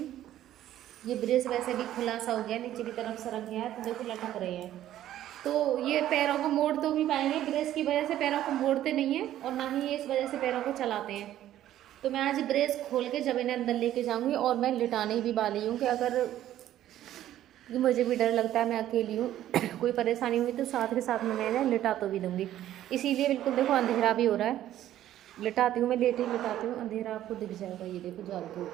ये ब्रेस वैसे भी खुला सा हो गया, नीचे की तरफ सरक गया है तो देखो लटक रहे हैं। तो ये पैरों को मोड़ तो भी पाएंगे, ब्रेस की वजह से पैरों को मोड़ते नहीं हैं और ना ही ये इस वजह से पैरों को चलाते हैं। तो मैं आज ब्रेस खोल के जब इन्हें अंदर लेके जाऊंगी, और मैं लिटाने भी वाली हूँ कि अगर मुझे भी डर लगता है, मैं अकेली हूँ कोई परेशानी हुई तो साथ के साथ में मैं इन्हें लिटा तो भी दूँगी। इसीलिए बिल्कुल देखो अंधेरा भी हो रहा है, लिटाती हूँ मैं, लेट ही लिटाती हूँ, अंधेरा आपको दिख जाएगा। ये देखो जाल के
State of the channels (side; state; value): left; quieter; 12.6 dB